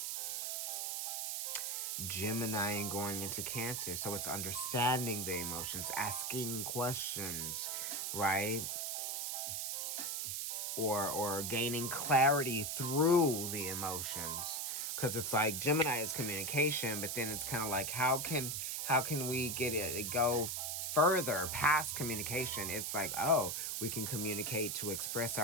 Gemini and going into Cancer. So it's understanding the emotions, asking questions, right? Or gaining clarity through the emotions. Because it's like Gemini is communication, but then it's kind of like how can we get it go further past communication? It's like, oh, we can communicate to express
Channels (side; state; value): right; noise; hiss, 2 dB below the sound